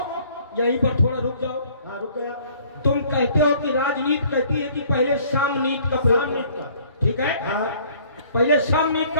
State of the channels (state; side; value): inverted; both; correlation -0.57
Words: यहीं पर थोड़ा रुक जाओ। हाँ रुक गया। तुम कहते हो कि राजनीति कहती है कि पहले साम नीति का प्रयोग, सामनीति का, ठीक है? हाँ पहले साम नीति